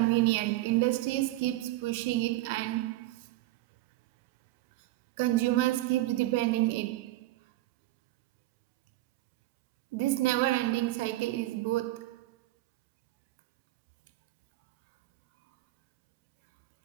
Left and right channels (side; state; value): left; quieter; 16.9 dB